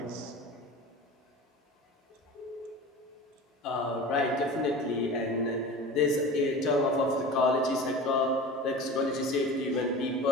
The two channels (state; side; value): normal; both; correlation 0.35